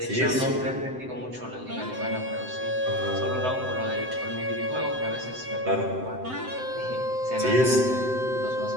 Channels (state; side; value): late; left; 7.8 ms